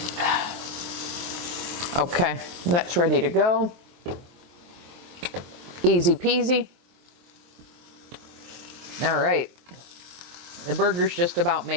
Okay, that's ready to go. Easy peasy. All right, the burger's just about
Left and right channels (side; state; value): left; late; 23 ms